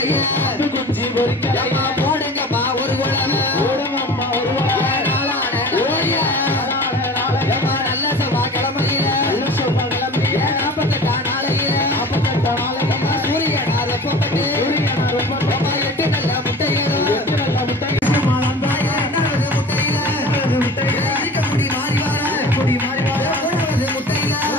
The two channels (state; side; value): normal; both; correlation 0.40